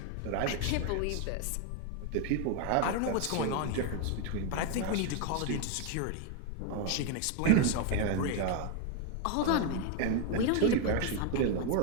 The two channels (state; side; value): different; both; correlation 0.01